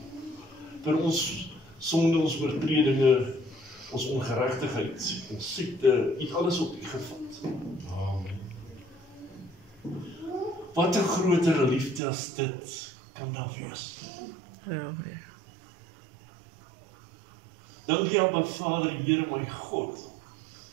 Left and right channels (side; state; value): left; drops out; at 12.0 s